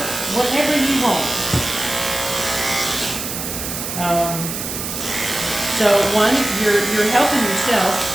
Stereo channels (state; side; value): noise; right; hiss, 5 dB below the sound